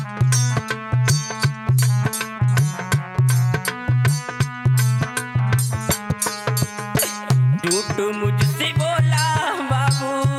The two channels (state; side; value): identical; both; correlation 1.00